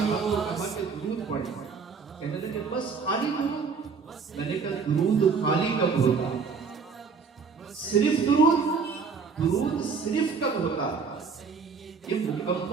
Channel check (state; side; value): quieter; left; 5.3 dB